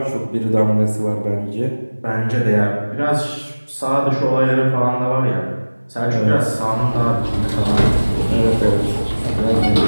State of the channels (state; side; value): inverted; both; correlation -1.00